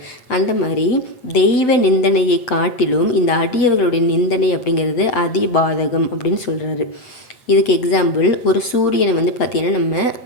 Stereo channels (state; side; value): late; right; 8.8 ms